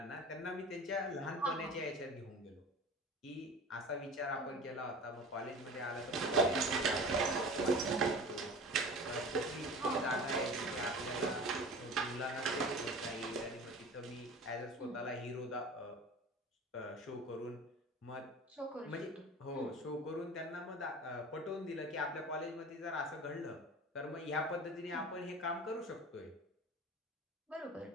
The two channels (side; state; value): both; normal; correlation 0.38